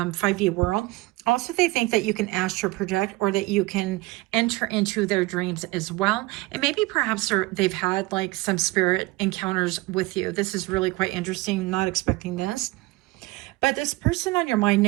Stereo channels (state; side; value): quieter; left; 21.6 dB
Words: world. Also, they think that you can astral project, or that you can enter into their dreams as well. And maybe perhaps they've had like some spirit encounters with you. This is really quite interesting. Not expecting this. But this person on your mind